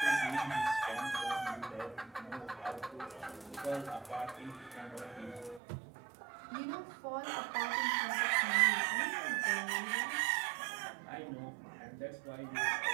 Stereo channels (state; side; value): drops out; left; at 5.6 s